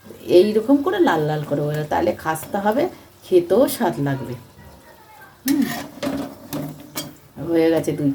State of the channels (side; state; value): both; identical; correlation 1.00